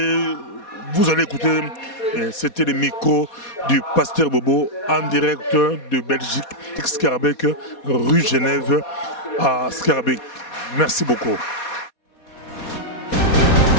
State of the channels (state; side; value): late; right; 4.2 ms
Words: vous allez écouter. C'était le micro du pasteur Bobo en direct de Belgique, Scarbeck, rue Genève à Scarbeck. Merci beaucoup.